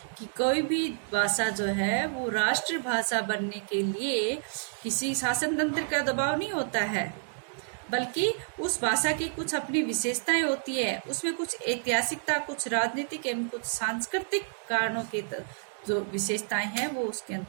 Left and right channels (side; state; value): left; silent; digital silence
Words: कि कोई भी भाषा जो है वो राष्ट्रभाषा बनने के लिए किसी शासन तंत्र का दबाव नहीं होता है, बल्कि उस भाषा की कुछ अपनी विशेषताएं होती है। उसमें कुछ ऐतिहासिकता, कुछ राजनीतिक एवं कुछ सांस्कृतिक कारणों के जो विशेषताएं हैं वो उसके